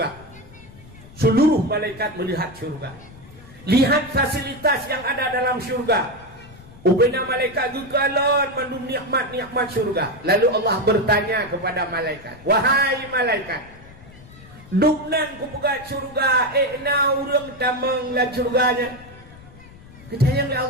Seluruh malaikat melihat surga. Lihat fasilitas yang ada dalam surga. Ubena malaikat gugalon mandum nikmat-nikmat surga. Lalu Allah bertanya kepada malaikat, wahai malaikat, duknan ku pegat surga, na urang tamang la surganya. Kecayang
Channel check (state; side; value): noise; left; rumble, 21 dB below the sound